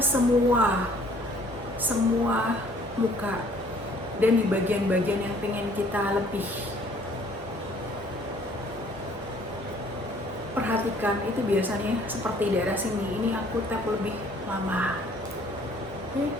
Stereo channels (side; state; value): both; normal; correlation 0.58